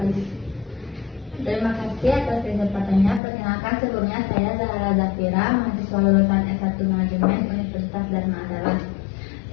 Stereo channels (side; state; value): right; drops out; at 3.2 s